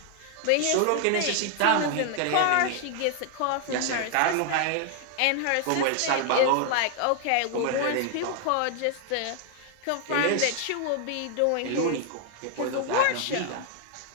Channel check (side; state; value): both; different; correlation 0.00